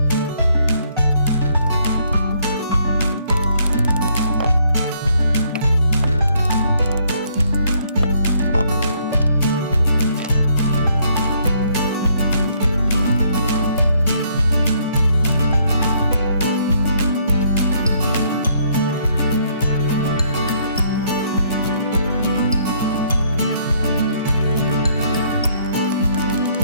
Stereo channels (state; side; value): inverted; both; correlation -0.67